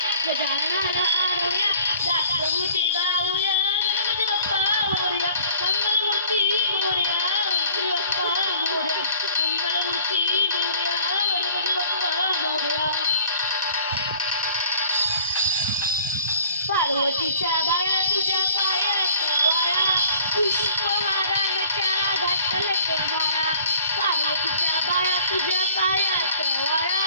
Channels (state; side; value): inverted; both; correlation -0.53